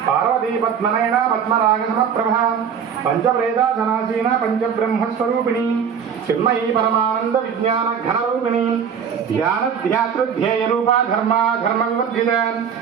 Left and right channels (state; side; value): quieter; left; 7.4 dB